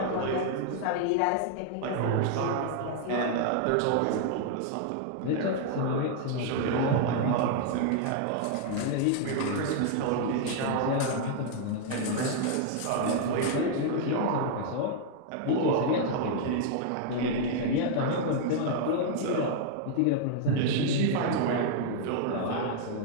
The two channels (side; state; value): both; different; correlation -0.01